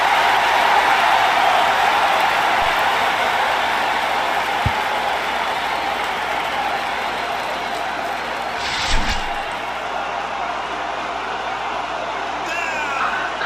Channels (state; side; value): noise; left; hum, 22 dB below the sound